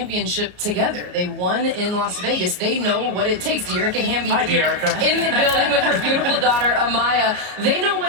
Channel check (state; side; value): late; left; 33 ms